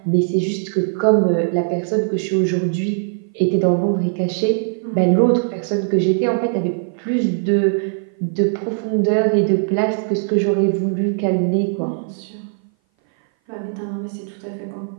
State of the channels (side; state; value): left; silent; 58 dB below the other